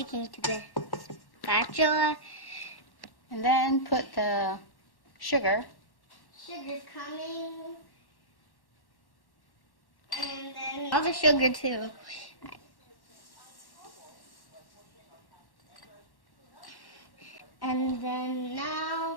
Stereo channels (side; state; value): right; late; 1.1 ms